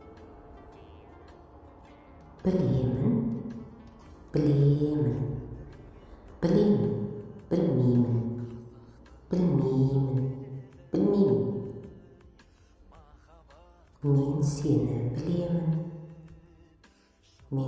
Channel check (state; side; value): identical; both; correlation 1.00